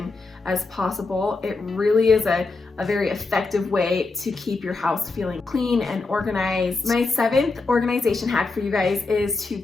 as possible. It really is a very effective way to keep your house feeling clean and organized. My 7th organization hack for you guys is to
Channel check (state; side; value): quieter; right; 3.7 dB